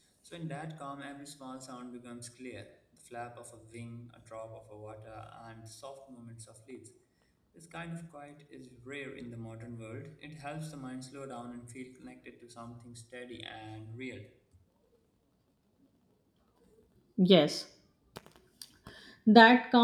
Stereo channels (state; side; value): identical; both; correlation 1.00